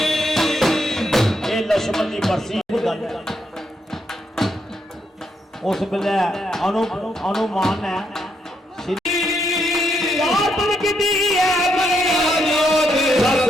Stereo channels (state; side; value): normal; both; correlation 0.78